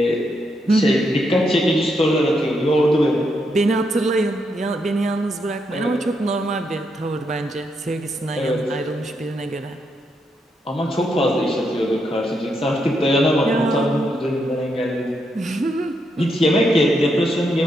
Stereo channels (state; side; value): normal; both; correlation 0.80